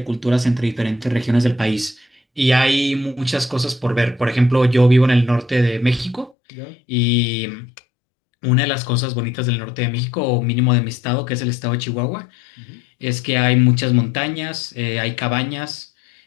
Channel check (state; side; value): drops out; right; at 6.4 s